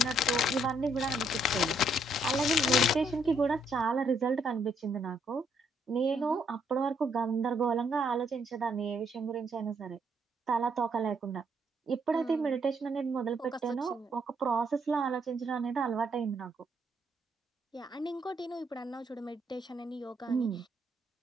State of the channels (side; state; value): both; normal; correlation 0.71